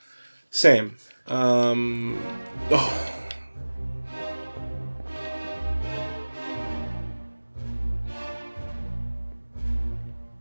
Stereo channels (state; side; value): inverted; both; correlation -1.00